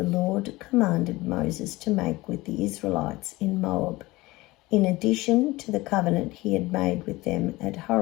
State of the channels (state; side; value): quieter; right; 20.3 dB